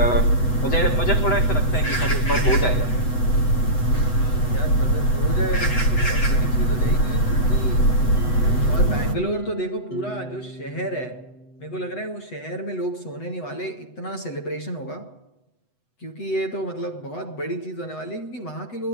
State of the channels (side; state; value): right; late; 8.0 ms